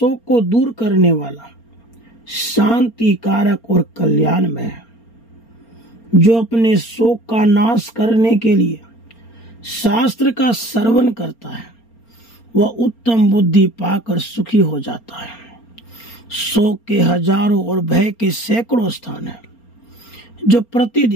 को दूर करने वाला, शांति कारक और कल्याणमय है। जो अपने शोक का नाश करने के लिए शास्त्र का श्रवण करता है वह उत्तम बुद्धि पाकर सुखी हो जाता है। शोक के हजारों और भय के सैकड़ों स्थान हैं जो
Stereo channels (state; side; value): late; right; 4.3 ms